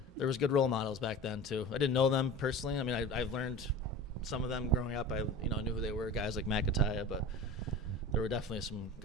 there was good role models back then too. I didn't know them personally. I mean, I've learned some of them growing up. I knew who they were, guys like McAtaya, but there were definitely some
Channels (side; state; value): both; normal; correlation 0.34